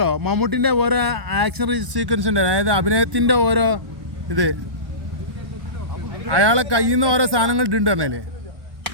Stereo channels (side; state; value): left; late; 1.1 ms